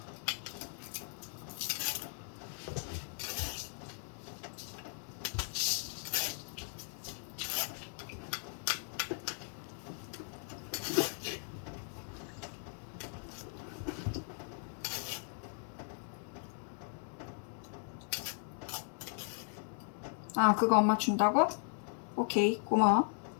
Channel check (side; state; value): right; silent; 53 dB below the other